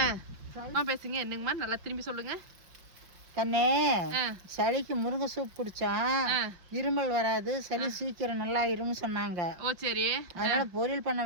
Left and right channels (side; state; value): left; late; 5.5 ms